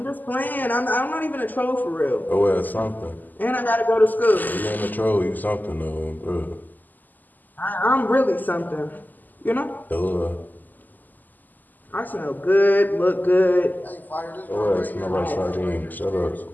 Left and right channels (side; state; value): right; late; 0.085 ms